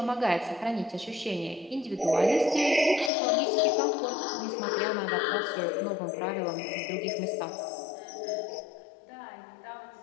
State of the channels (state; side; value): drops out; right; at 3.1 s